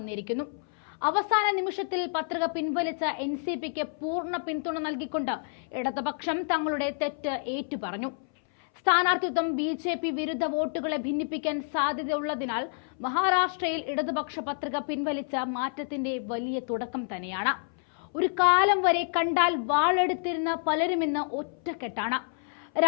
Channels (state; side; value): silent; right; 59 dB below the other